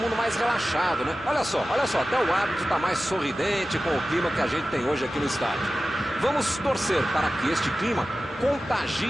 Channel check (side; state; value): both; normal; correlation 0.95